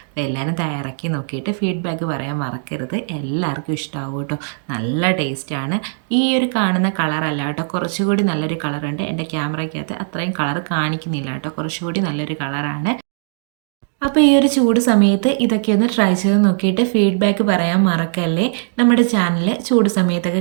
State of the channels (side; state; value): left; silent; digital silence